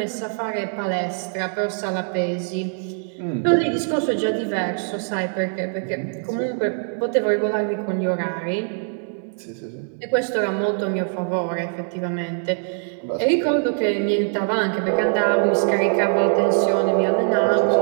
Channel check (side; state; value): left; silent; 61 dB below the other